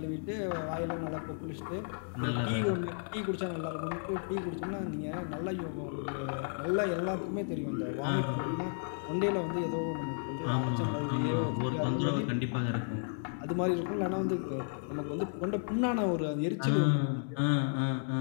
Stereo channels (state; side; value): silent; right; digital silence